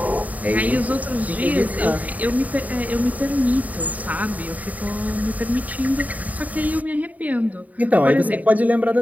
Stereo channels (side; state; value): left; late; 0.073 ms